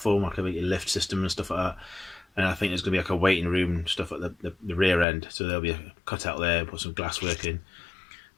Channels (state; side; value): drops out; right; at 5.1 s